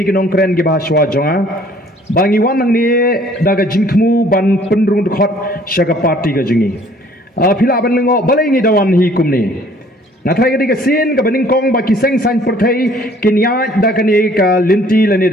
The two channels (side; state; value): both; normal; correlation 0.57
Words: kinong kren gi bahaswa jonga bangi wan nang ni da ka jingkhmu ban penrung khot shaka party ka jingi phila ban lengo balai ngi dawan hi kumni nathai ka sin ka baning kong ba kiseng san perthai kinya da ka ni ka linti lani